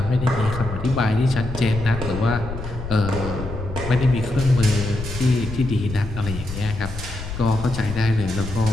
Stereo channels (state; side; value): noise; left; rumble, 8 dB below the sound